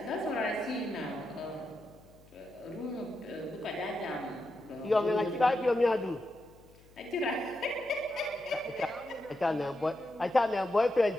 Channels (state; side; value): noise; left; hum, 26 dB below the sound